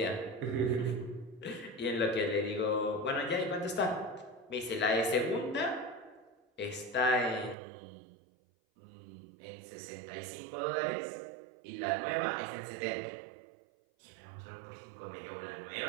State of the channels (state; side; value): drops out; left; at 7.6 s